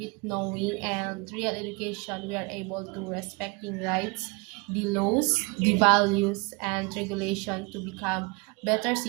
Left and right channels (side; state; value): left; quieter; 29.6 dB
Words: knowing. And real education, we are able to respecting rights, the laws, the values, and regulation to become better